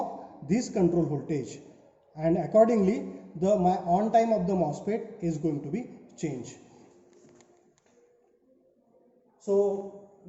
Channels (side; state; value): both; identical; correlation 1.00